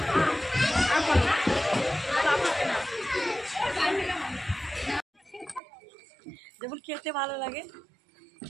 যেমন খেতে ভালো লাগে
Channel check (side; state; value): left; drops out; at 5.6 s